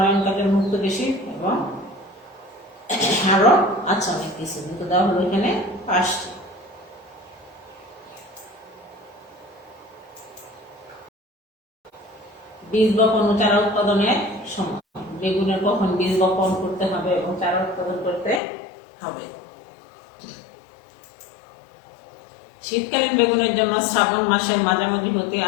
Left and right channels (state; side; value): drops out; right; at 18.4 s